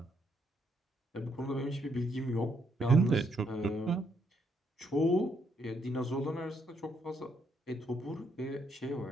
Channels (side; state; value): both; normal; correlation 0.74